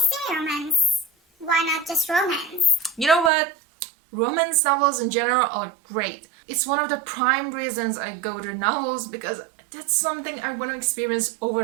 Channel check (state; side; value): drops out; left; at 3.3 s